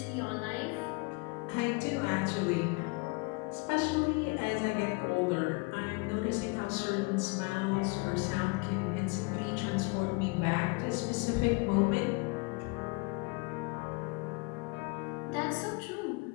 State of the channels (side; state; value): right; quieter; 29.2 dB